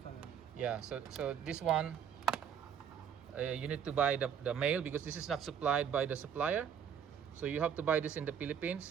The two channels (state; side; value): quieter; left; 8.1 dB